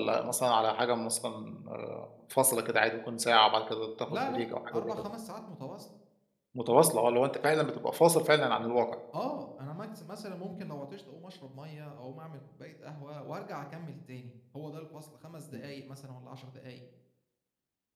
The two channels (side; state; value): both; identical; correlation 1.00